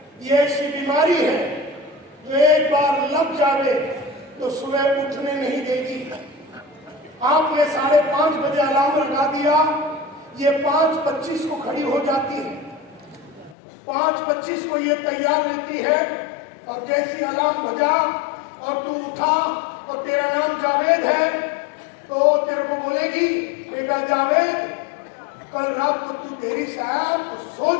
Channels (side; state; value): right; drops out; at 13.6 s